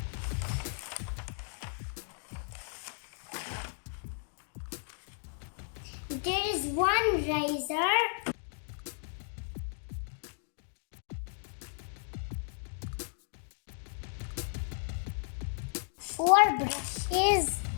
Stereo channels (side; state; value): right; silent; digital silence